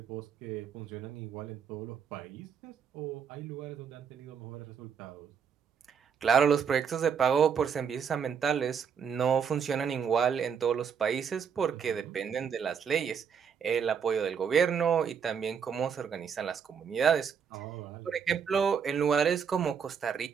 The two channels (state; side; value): quieter; left; 7.0 dB